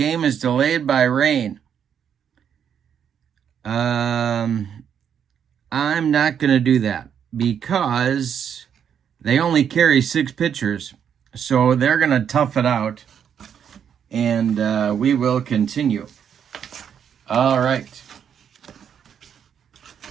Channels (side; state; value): left; quieter; 8.2 dB